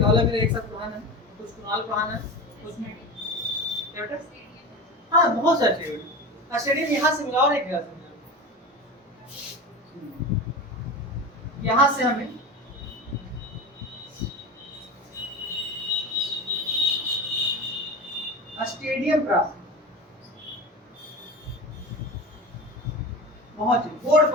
धौलावीरा एक साथ पढ़ाना है, कुछ कुणाल पढ़ाना है, उसमें बेटा हाँ बहुत सारे स्टेडियम यहाँ से मिला और एक जगह से मिला। यहाँ से हमें स्टेडियम प्राप्त, बहुत बोर्ड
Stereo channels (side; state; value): both; normal; correlation 0.28